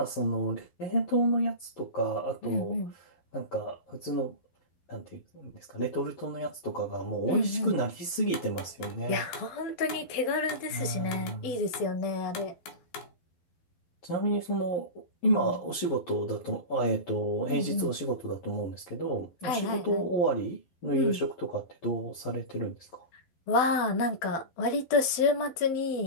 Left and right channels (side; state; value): right; late; 12 ms